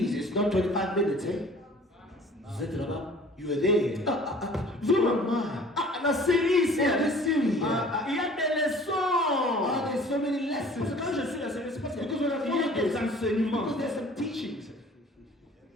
it's not 25 minutes, eh? Vous êtes là-bas. You are there. Vraiment. Ah, La série, c'est. yeah, this series. Il y a des leçons. There's so many Parce que lessons. quand je suis la série, c'est parce qu'il Because when I y a follow des this, enseignements. because there's some teachings.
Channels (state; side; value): normal; both; correlation 0.49